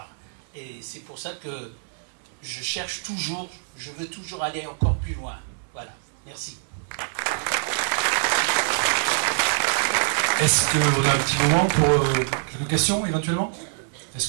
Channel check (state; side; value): silent; left; 62 dB below the other